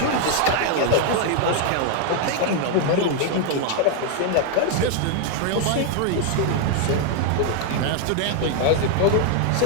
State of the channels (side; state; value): both; different; correlation 0.00